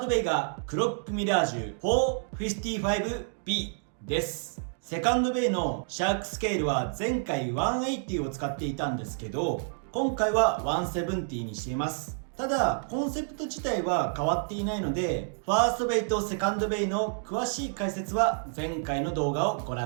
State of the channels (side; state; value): left; silent; digital silence